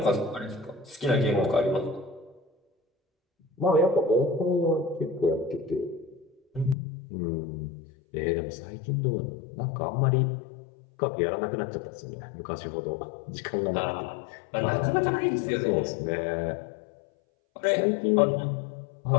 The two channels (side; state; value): right; drops out; at 6.8 s